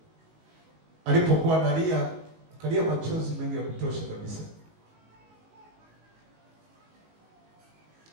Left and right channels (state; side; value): late; left; 19 ms